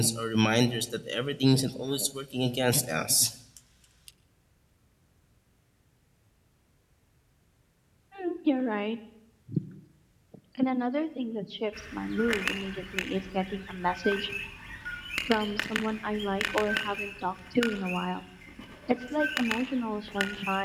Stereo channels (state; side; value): identical; both; correlation 1.00